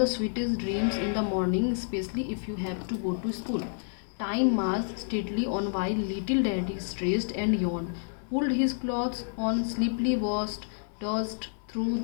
sweetest dreams in the morning, especially if you have to go to school. Time marched steadily on while little daddy stressed and yawned, pulled his clothes on, sleepily washed, dozed through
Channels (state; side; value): silent; right; 58 dB below the other